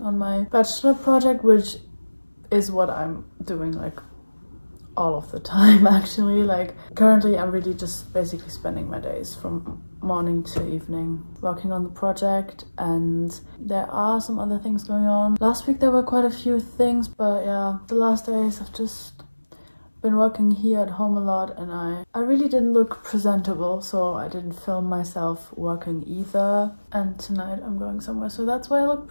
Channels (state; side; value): inverted; both; correlation -1.00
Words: on my bachelor project, which is what I'm doing like all of the time actually. Like currently I'm really just basically spending my days from morning to evening working on the project, and there are some other things going on. Last week there were quite a few things, but yeah, the last days I've just been working here at home a lot, and I really didn't look presentable, so I didn't film myself working either. And tonight I'm going somewhere, so that's why I look